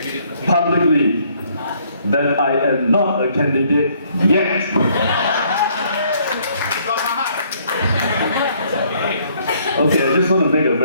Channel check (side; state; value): both; inverted; correlation -0.65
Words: publicly that I am not a candidate yet. Okay, I just want to make a